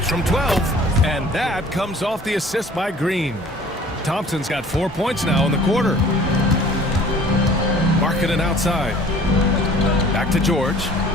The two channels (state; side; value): normal; both; correlation 0.50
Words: from 12, and that comes off the assist by Green. Thompson's got 4 points now in the quarter. Markkanen outside. Back to George.